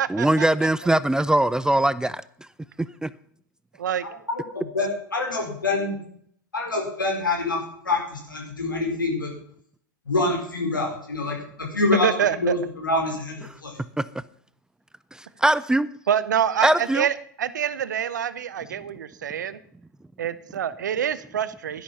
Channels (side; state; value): both; normal; correlation 0.33